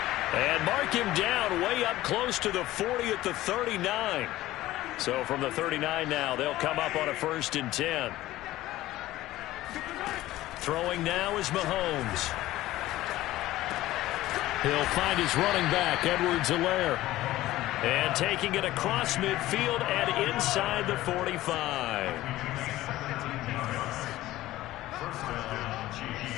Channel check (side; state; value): right; quieter; 16.1 dB